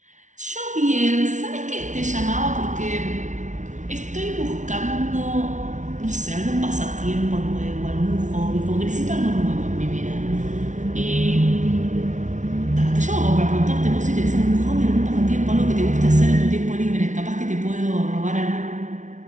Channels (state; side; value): late; left; 0.36 ms